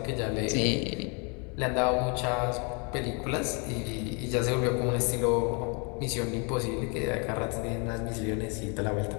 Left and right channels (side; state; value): right; quieter; 34.2 dB